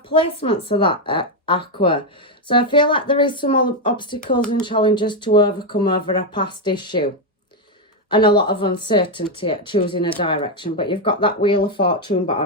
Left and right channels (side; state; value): both; normal; correlation 0.04